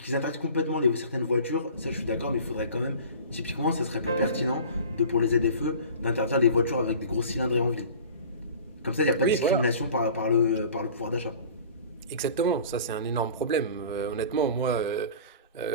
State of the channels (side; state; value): both; inverted; correlation -0.42